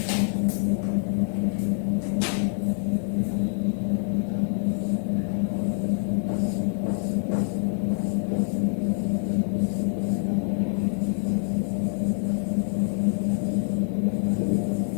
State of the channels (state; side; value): silent; right; 61 dB below the other